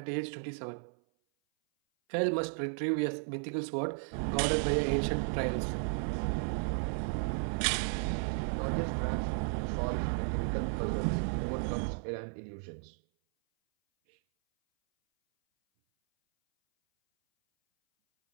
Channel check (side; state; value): left; silent; 55 dB below the other